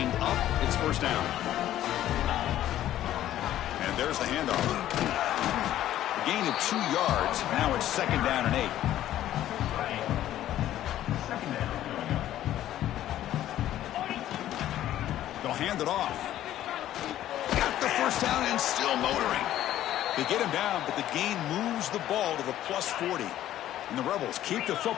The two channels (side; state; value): right; quieter; 12.8 dB